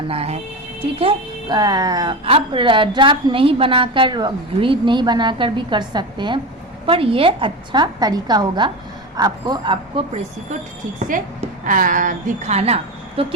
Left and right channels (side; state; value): both; normal; correlation 0.23